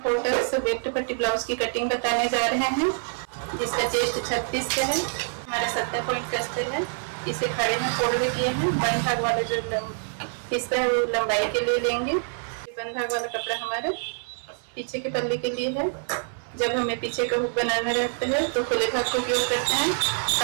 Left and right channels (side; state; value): left; silent; 58 dB below the other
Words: 4 टक्स बैक टू पट्टी ब्लाउज की कटिंग बताने जा रहे हैं, जिसका चेस्ट 36 का है। हमारा 70 पॉइंट का अस्तर है। इसे खड़े में फोल्ड किए हैं। बंद भाग वाला जो हिस्सा है वो लंबाई के लिए लेंगे। बंद भाग वाला कपड़ा हमारे पीछे के पल्ले के लिए है। जब हमें पीछे का हुक बनाना रहता है तो खुले भाग का उपयोग करते हैं।